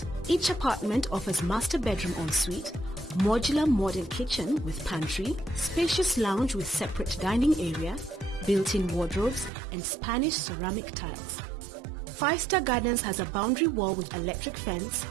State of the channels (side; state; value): left; drops out; at 9.5 s